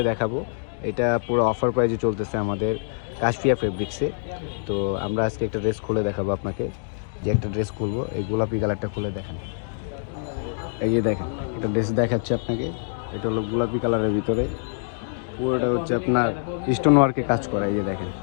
দেখাবো। এটা পুরো অফার প্রাইজে চলতেছে আমাদের কাশফিয়া ফেব্রিক্সে। তো আমরা আজকে একটা ড্রেস খুলে দেখাবো আপনাকে। যে একটা ড্রেস খুলবো, এই গোলাপি কালারটা খুলে দেখান। এই যে দেখেন, একটা ড্রেস দেখাচ্ছে আপনাকে। এটা হলো গোলাপি কালারের ভিতরে, পুরোটা হচ্ছে আপনার স্টোন ওয়ার্কে কাজ করা। এই যে দেখেন,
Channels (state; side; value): silent; right; digital silence